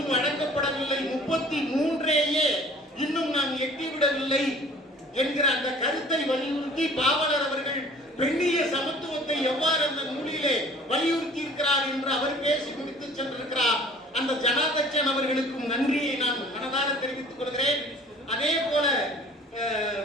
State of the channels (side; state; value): both; normal; correlation 0.49